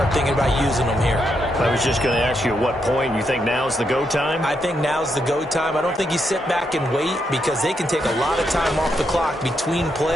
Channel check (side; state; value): both; normal; correlation 0.80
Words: thinking about using them here. I was just going to ask you at what point you think now's the go time? I think now's the go time. I don't think you sit back and wait because they can take a lot of time off the clock between